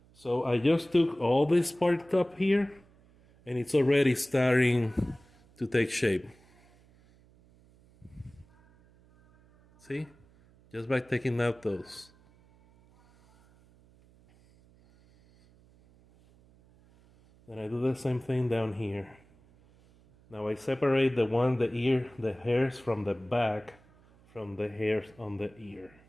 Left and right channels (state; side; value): noise; right; hum, 29 dB below the sound